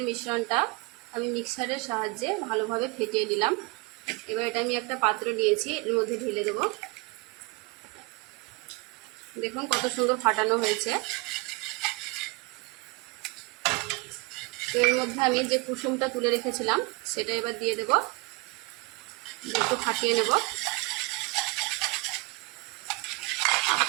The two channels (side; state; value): left; quieter; 26.5 dB